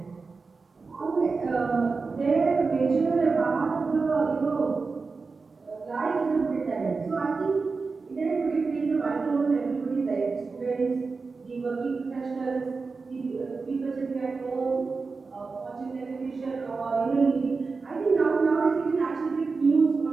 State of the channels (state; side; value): quieter; left; 4.4 dB